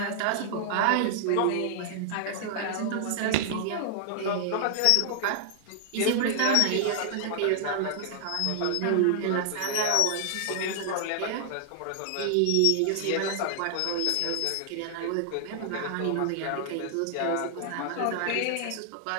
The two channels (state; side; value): different; both; correlation -0.01